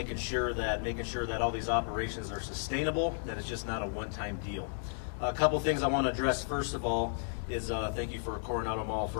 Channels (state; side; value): silent; right; digital silence